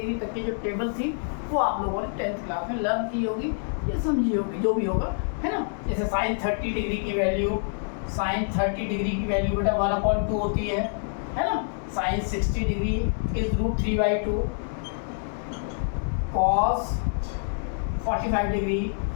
तक की जो टेबल थी वो आप लोगों ने 10th क्लास में लर्न की होगी या समझी होगी, जो भी होगा, है ना। जैसे साइन 30 डिग्री की वैल्यू, साइन 30 डिग्री की वैल्यू बेटा 1/2 होती है ना। Sine 60 degree is √3/2, cos 45 degree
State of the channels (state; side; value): silent; right; digital silence